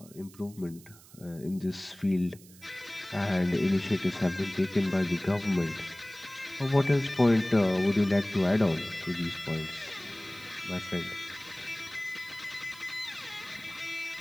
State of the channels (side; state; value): right; noise; hiss, 22 dB below the sound